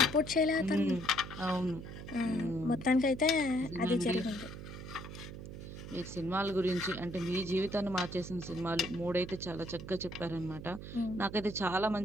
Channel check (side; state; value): right; noise; hum, 10 dB below the sound